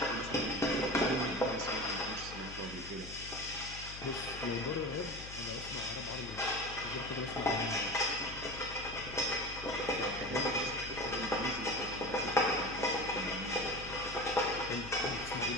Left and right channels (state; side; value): noise; left; hum, 13 dB below the sound